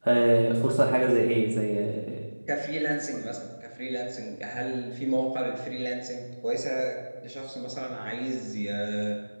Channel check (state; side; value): inverted; both; correlation -1.00